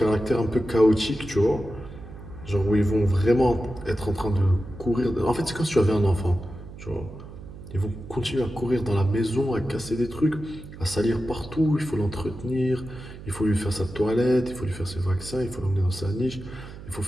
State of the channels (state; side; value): noise; right; hum, 14 dB below the sound